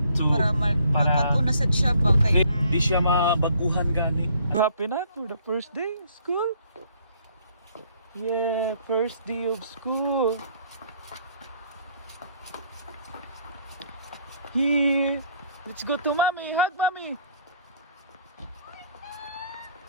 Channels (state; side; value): inverted; both; correlation -0.62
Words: So, para makatuna sa siya ba kay di siya mabaguhan gani. Happy na for the first day of school. Yeah, first day of school. Here, let's go to mommy. Hug mommy.